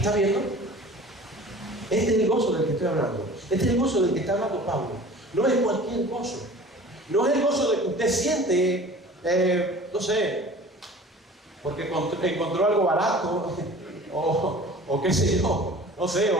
viendo? Este es el gozo del que estoy hablando. Este es el gozo del que está hablando Pablo. No es cualquier gozo. No es el gozo de que usted siente, no sé, porque encontró algo barato, o qué sé yo, no sé,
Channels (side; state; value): both; normal; correlation 0.43